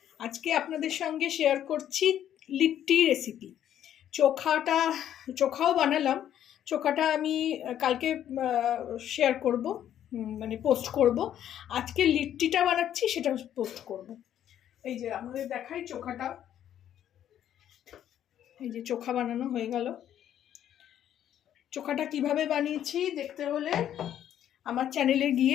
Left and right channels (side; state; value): right; quieter; 10.7 dB